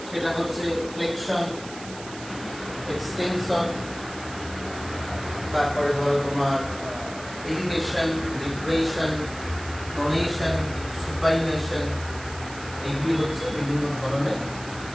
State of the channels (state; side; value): noise; right; hiss, 15 dB below the sound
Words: সেটা হচ্ছে ফ্লেকশন, এক্সটেনশন, তারপরে ধরো তোমার এলিভেশন, ডিপ্রেশন, প্রোনেশন, সুপাইনেশন। এইগুলি হচ্ছে বিভিন্ন ধরনের